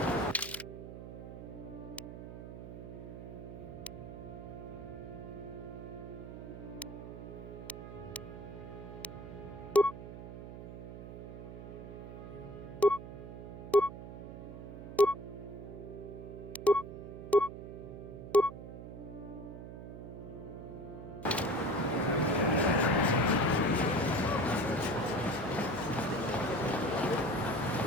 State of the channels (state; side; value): noise; right; hum, 10 dB below the sound